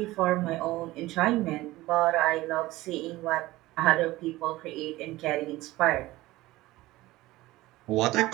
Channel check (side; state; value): left; quieter; 18.3 dB